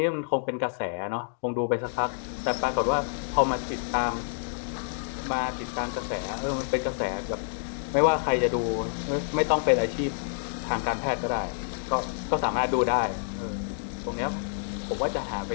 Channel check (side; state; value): right; silent; digital silence